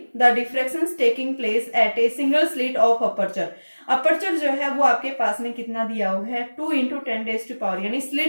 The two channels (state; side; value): inverted; both; correlation -1.00